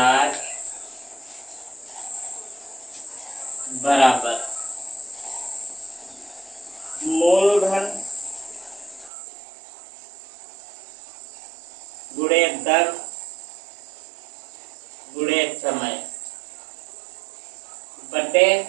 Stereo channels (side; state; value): left; drops out; at 9.1 s